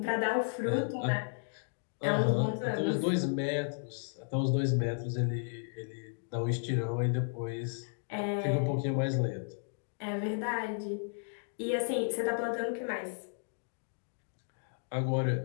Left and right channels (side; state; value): right; silent; digital silence